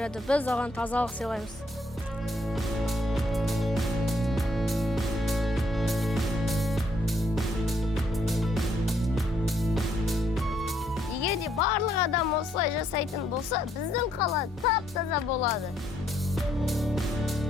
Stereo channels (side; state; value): both; normal; correlation 0.71